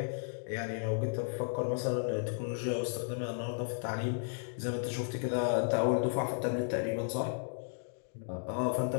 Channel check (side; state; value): right; silent; digital silence